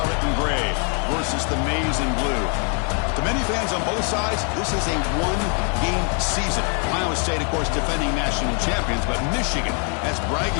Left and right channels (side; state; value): right; quieter; 39.4 dB